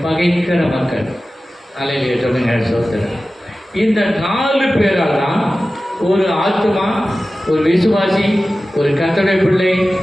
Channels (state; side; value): normal; both; correlation 0.95